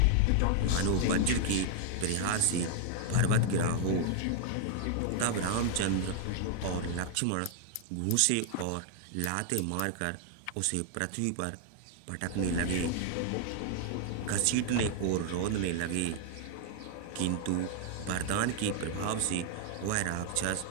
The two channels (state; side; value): different; both; correlation 0.00